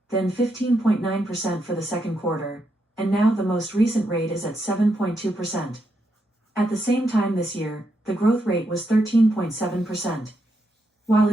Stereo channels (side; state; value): both; normal; correlation 0.81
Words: then 15.9% for the second quarter, and now the most recent rate is at 7.2%. At the same time this year, the growth rate was 13.7%. While